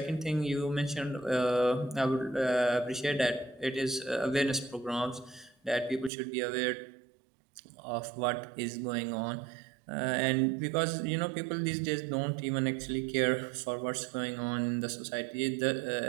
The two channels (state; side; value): drops out; left; at 6.1 s